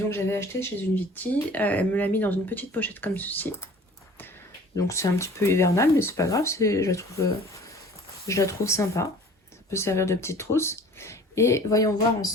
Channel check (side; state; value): both; normal; correlation 0.47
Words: j'avais acheté chez une Viti. Elle me l'a mis dans une petite pochette comme ceci. Donc c'est un petit peu hivernal, mais c'est pas grave. Je la trouve sympa. Ça peut servir de petite trousse. Et voyons voir